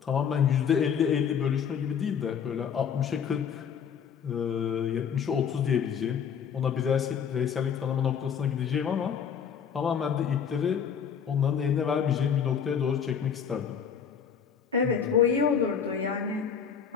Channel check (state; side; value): quieter; right; 7.4 dB